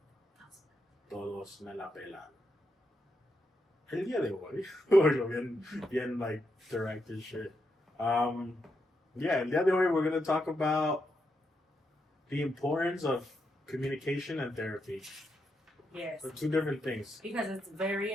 Todos me la pelan. El día de hoy, bueno, bien like directed shit. Yeah, el día de hoy we're going to talk about the importance of communication and therapy. Yes. They're two different things. Because it's very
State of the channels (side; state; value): both; normal; correlation 0.82